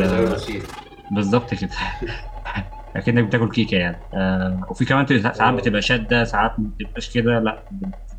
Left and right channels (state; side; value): identical; both; correlation 1.00